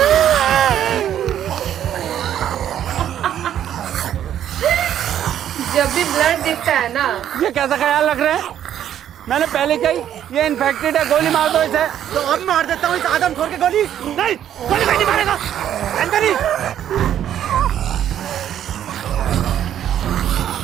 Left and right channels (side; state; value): left; quieter; 10.5 dB